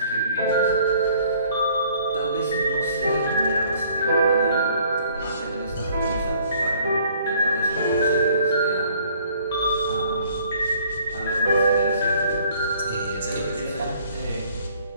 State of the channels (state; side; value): inverted; both; correlation -0.59